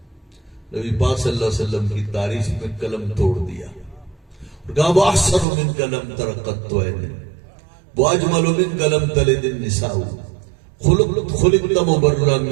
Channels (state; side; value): drops out; left; at 5.5 s